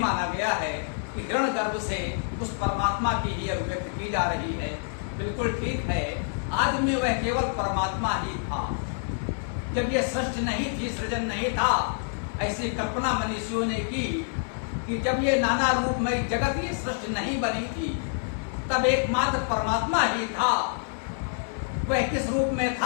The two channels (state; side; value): silent; right; digital silence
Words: गया है कि हिरण गर्भ से उस परमात्मा की ही अभिव्यक्ति की जा रही है। बिल्कुल ठीक है। आदि में वह केवल परमात्मा ही था। जब यह सृष्टि नहीं थी, सृजन नहीं था, ऐसी कल्पना मनुष्यों ने की कि जब ये नाना रूपमय जगत, ये सृष्टि नहीं बनी थी, तब एकमात्र परमात्मा ही था। वह किस रूप में